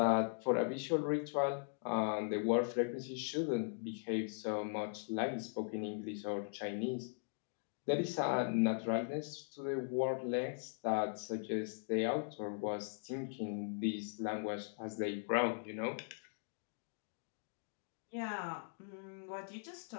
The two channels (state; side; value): silent; right; digital silence